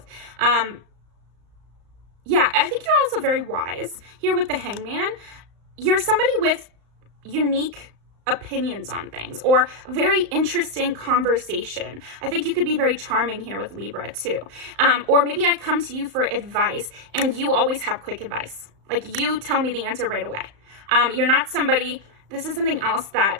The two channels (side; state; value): left; late; 35 ms